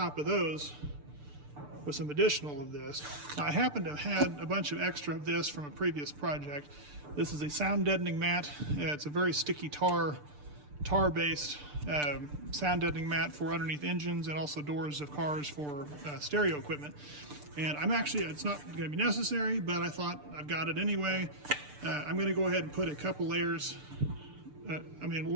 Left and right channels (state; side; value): late; left; 6.8 ms